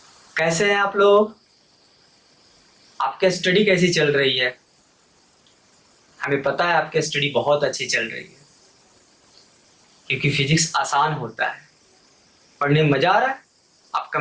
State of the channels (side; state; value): both; identical; correlation 1.00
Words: कैसे हैं आप लोग? आपकी स्टडी कैसी चल रही है? हमें पता है आपकी स्टडी बहुत अच्छी चल रही है, क्योंकि फिजिक्स आसान होता है। पढ़ने में मजा आ रहा है? आप